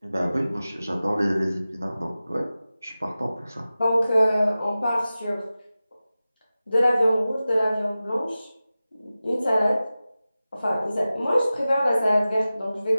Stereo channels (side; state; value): both; inverted; correlation -0.95